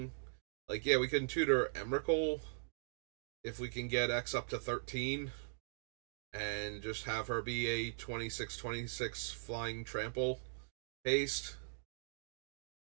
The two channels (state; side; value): silent; left; digital silence